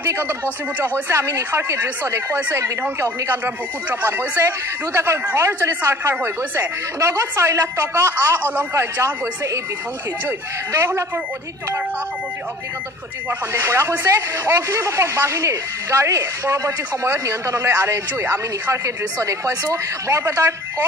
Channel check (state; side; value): normal; both; correlation 0.48